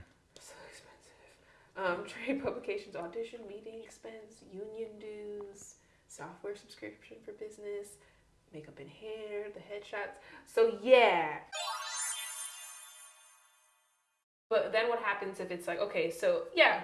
So expensive. Trade publications, audition, meeting expense, union dues, software subscription for business, makeup and hair, the headshots. So yeah. But then what happens if it's like, okay, so yeah,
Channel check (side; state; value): both; identical; correlation 1.00